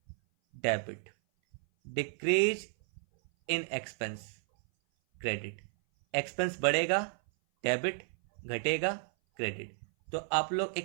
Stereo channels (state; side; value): silent; left; 56 dB below the other